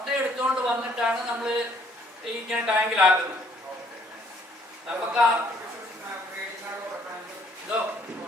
എടുത്തുകൊണ്ട് വന്നിട്ടാണ് നമ്മൾ ഇങ്ങനെ ടാങ്കിലാക്കുന്നത്. നമുക്ക്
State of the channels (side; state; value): both; normal; correlation 0.63